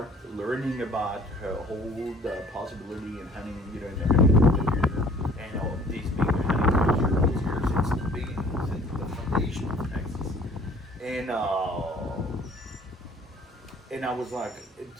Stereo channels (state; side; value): normal; both; correlation 0.54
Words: learning about whole the possibility in hunting, in the hunting culture, and all these big hunting culture was here since the beginning, since the foundation of Texas. And I was like,